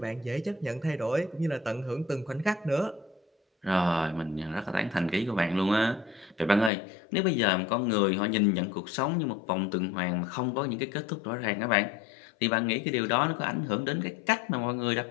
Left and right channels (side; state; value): right; drops out; at 6.7 s